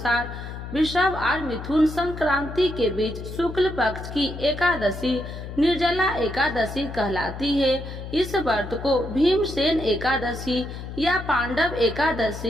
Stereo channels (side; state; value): left; noise; hum, 9 dB below the sound